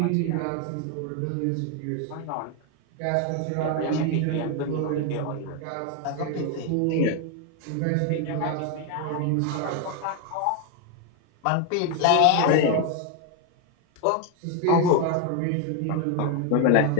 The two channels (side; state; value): both; different; correlation 0.01